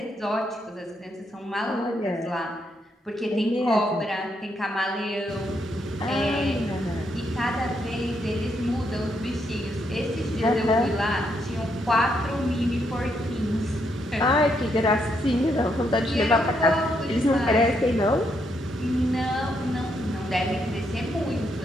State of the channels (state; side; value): normal; both; correlation 0.77